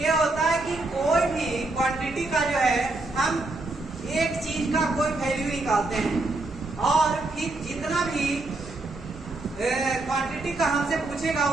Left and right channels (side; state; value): left; quieter; 3.1 dB